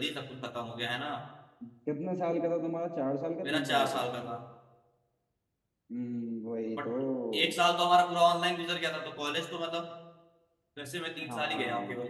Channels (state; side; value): identical; both; correlation 1.00